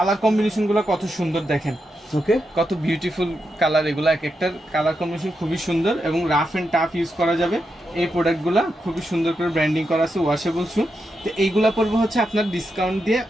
কম্বিনেশন গুলো কত সুন্দর দেখেন, ওকে, কত বিউটিফুল কালার, এগুলো এক একটার কালার কম্বিনেশন খুবই সুন্দর এবং রাফ এন্ড টাফ ইউজ করা যাবে। এই প্রোডাক্টগুলো খুবই সুন্দর করে ব্র্যান্ডিং করা আছে, ওয়াশেবল শু। তো এইগুলা পড়বে হচ্ছে আপনার ডিসকাউন্ট দিয়ে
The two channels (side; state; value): both; normal; correlation 0.85